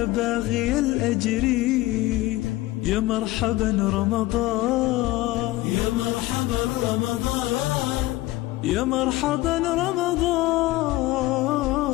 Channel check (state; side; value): quieter; right; 18.1 dB